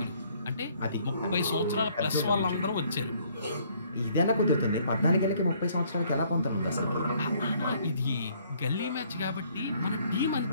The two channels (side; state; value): both; inverted; correlation -0.63